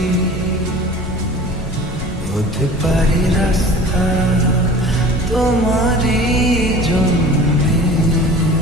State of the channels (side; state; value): both; normal; correlation 0.42